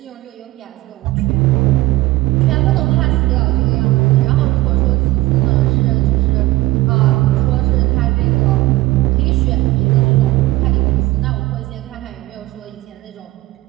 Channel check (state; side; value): quieter; left; 18.5 dB